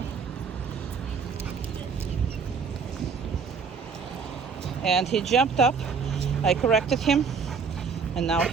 And he jumped up. I corrected him, and now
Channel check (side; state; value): left; quieter; 5.7 dB